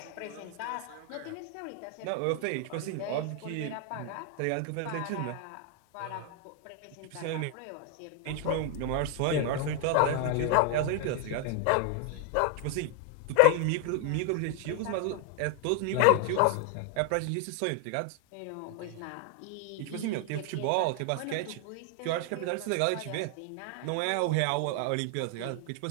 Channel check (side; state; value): both; different; correlation 0.00